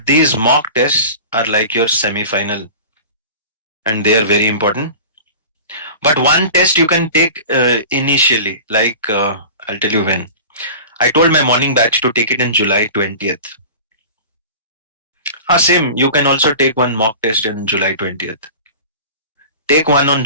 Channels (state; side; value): inverted; both; correlation -0.37